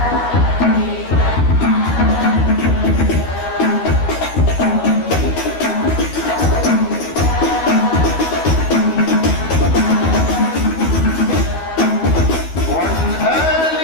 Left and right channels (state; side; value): late; right; 12 ms